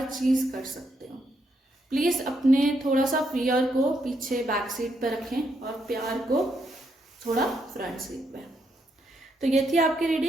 चीज़ कर सकते हो। प्लीज़ अपने थोड़ा सा फियर को पीछे बैक सीट पर रखें और प्यार को थोड़ा फ्रंट सीट पे। तो ये थी आपकी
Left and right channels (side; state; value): both; normal; correlation 0.77